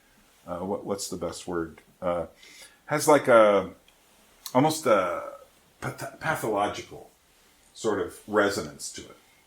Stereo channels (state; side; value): identical; both; correlation 1.00